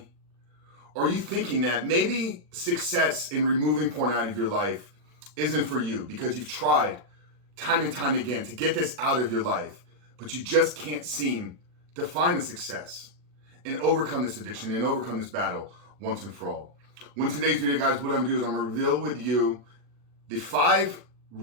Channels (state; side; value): late; left; 40 ms